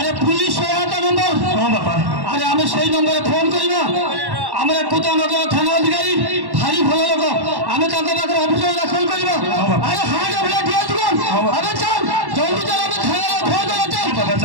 पुलिस सहायता नंबर हां बापा अरे हमें सही नंबर फोन करबा हमरे कुतानगर थाना अधिकारी भारी भलो लोग हमें ताका पाकर ऑफिसर दाखल करबा अरे हां जब ले दिया तू अरे चल जल्दी चल हमें थाना फोन कर चल बाबा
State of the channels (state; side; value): late; left; 1.1 ms